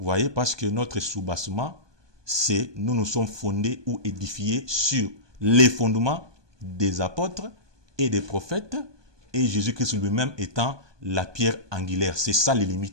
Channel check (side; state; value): left; late; 1.2 ms